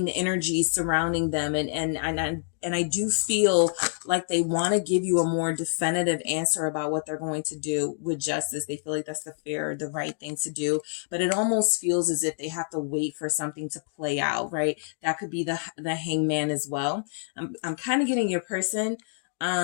energy surrounding them. And I do feel like they want to give you a more definitive answer about what they're going to do with justice. They feel like that's the right thing to do, but it almost feels as if they have to wait for something to play out, right? That could be the Hangman as well. I'm kind of getting your person,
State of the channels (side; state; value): right; silent; digital silence